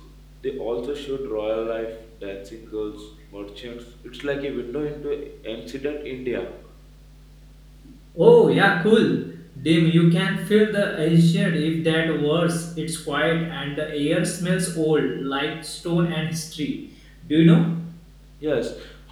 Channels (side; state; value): both; identical; correlation 1.00